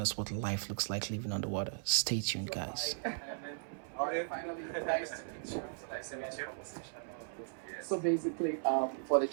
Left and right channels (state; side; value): silent; left; 53 dB below the other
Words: what life looks like living on the water. Stay tuned, guys. Finally, nice to meet you. Nice to meet you. So basically, for the